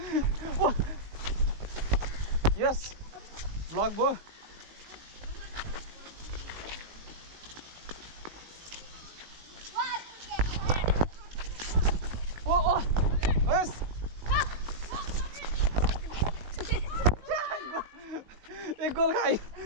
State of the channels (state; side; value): late; left; 19 ms